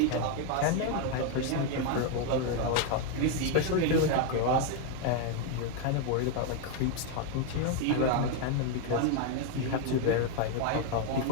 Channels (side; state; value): both; different; correlation 0.01